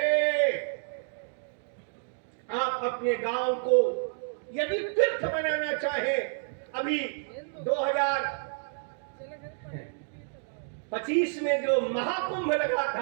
आप अपने गांव को यदि तीर्थ बनाना चाहे, अभी 2025 में जो महाकुंभ लगा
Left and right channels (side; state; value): left; silent; digital silence